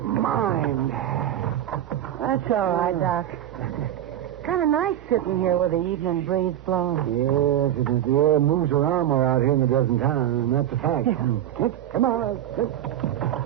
mind. That's all right, Doc. Kind of nice sitting here with the evening breeze blowing. Yes, it is. The air moves around more out here than it does in town, and that's a fact. Come on.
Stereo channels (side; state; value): left; quieter; 11.7 dB